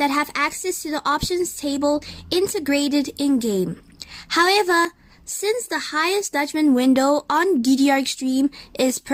have access to the options table integrated in-game. However, since the highest judgment window on DDR Extreme is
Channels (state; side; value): identical; both; correlation 1.00